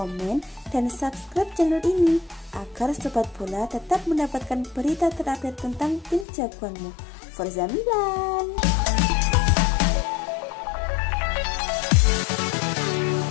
dan subscribe channel ini agar Sobat Bola tetap mendapatkan berita terupdate tentang tim jagoanmu. Forza Milan!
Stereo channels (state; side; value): drops out; right; at 6.2 s